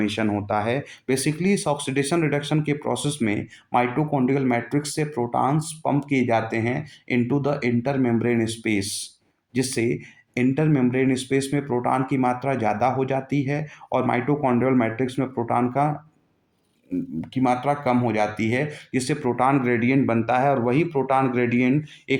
होता है। बेसिकली इस ऑक्सीडेशन रिडक्शन के प्रोसेस में माइटोकॉन्ड्रियल मैट्रिक्स से प्रोटॉन्स पंप किए जाते हैं into the inter membrane space, जिससे इंटर मेम्ब्रेन स्पेस में प्रोटॉन की मात्रा ज़्यादा हो जाती है और माइटोकॉन्ड्रियल मैट्रिक्स में प्रोटॉन की मात्रा कम हो जाती है, जिससे प्रोटॉन ग्रेडियंट बनता है और वही प्रोटॉन ग्रेडियंट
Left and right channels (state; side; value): identical; both; correlation 1.00